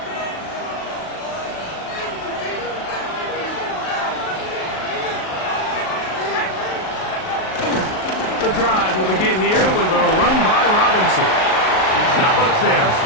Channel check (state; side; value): late; right; 38 ms